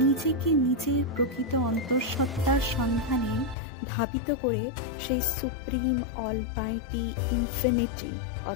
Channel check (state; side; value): drops out; right; at 3.6 s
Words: নিজের প্রকৃত অন্তঃসত্ত্বার সন্ধানে ধাবিত করে সেই সুপ্রিম, অলমাইটি, ইনফিনিটি